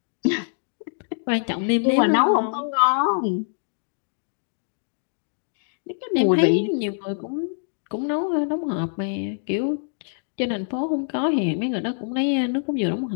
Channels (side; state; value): right; silent; digital silence